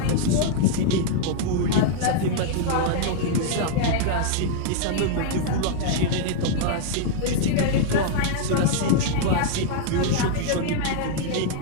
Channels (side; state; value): both; different; correlation -0.01